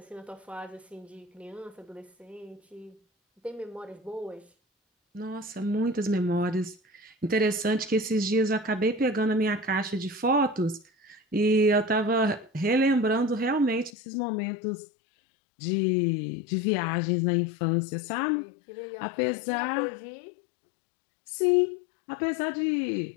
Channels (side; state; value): right; drops out; at 13.9 s